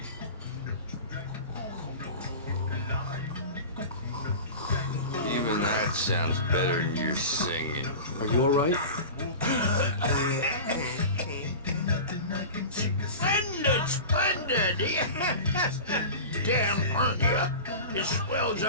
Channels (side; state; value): both; inverted; correlation -0.32